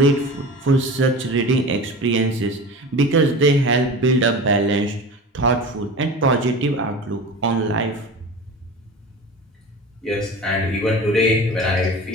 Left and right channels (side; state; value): both; normal; correlation 0.34